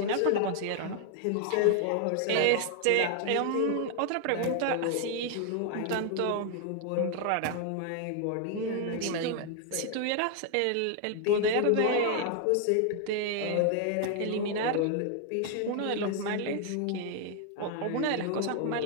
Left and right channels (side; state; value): both; different; correlation 0.00